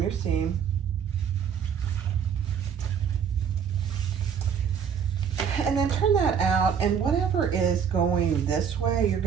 your seam. And then turn that out, and whatever is going this way, you're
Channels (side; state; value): left; quieter; 7.4 dB